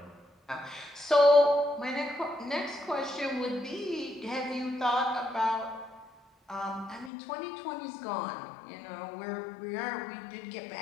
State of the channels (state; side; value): drops out; right; at 7.1 s